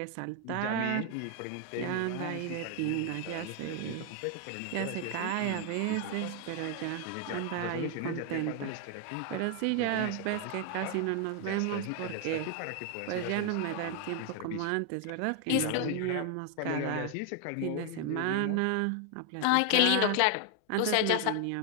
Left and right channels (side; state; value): both; different; correlation 0.01